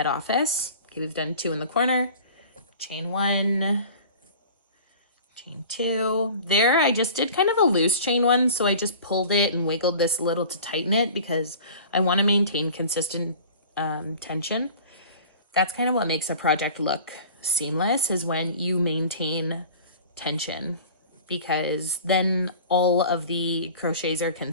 office. Okay, we've done 2 in the corner. Chain 1, chain 2. There, I just did kind of a loose chain 1, so I just pulled it and wiggled this a little to tighten it because I want to maintain consistent tension. That's kind of what makes a project look seamless, is when you maintain tension, because then all of the crochets are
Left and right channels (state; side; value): inverted; both; correlation -0.42